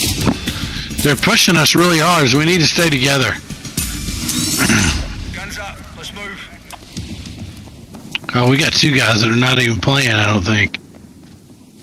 They're pushing us really hard, so we need to stay together. Guns up. Let's move. Oh, we got two guys that are not even playing, I don't think.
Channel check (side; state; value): both; identical; correlation 1.00